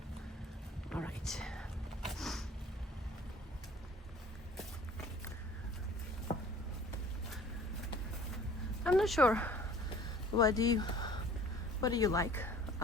all right. I'm not sure what do you like.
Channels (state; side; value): normal; both; correlation 0.50